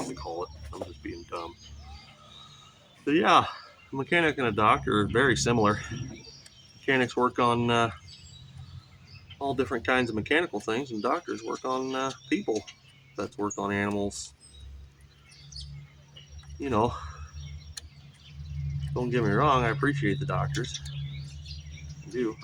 to call it. I'm just being dumb. But yeah, a mechanic and a doctor are very similar. Mechanics work on all different kinds of mechanical things, and doctors work on people. That's work on animals. You know, don't get me wrong, I appreciate the doctors. I do.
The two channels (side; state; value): both; identical; correlation 1.00